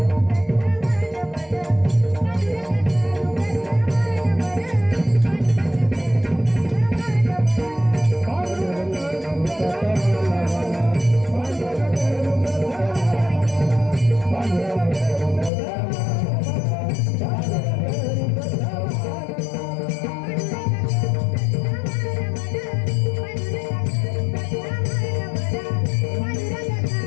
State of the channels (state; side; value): drops out; right; at 15.5 s